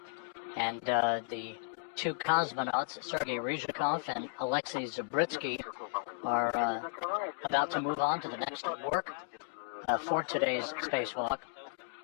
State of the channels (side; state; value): right; silent; digital silence